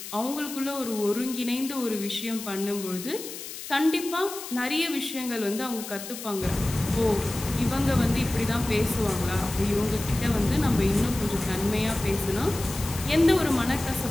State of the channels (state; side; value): noise; left; hiss, 10 dB below the sound